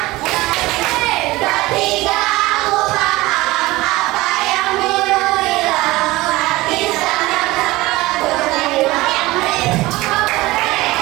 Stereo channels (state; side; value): quieter; left; 19.7 dB